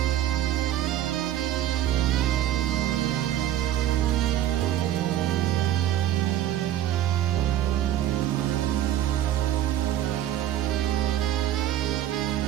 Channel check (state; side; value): quieter; left; 12.2 dB